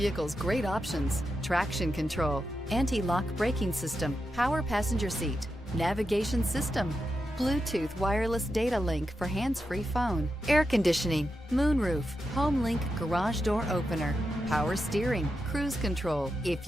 great options: traction control, anti-lock braking system, power passenger seat, navigation system, Bluetooth wireless data link for hands-free phone, air conditioning, moonroof, HomeLink garage door opener, power steering, cruise control. If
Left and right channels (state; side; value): normal; both; correlation 0.88